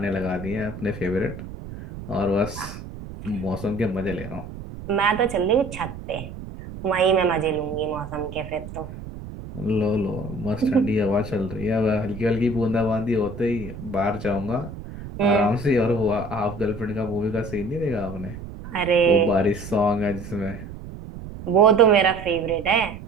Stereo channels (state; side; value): noise; right; rumble, 12 dB below the sound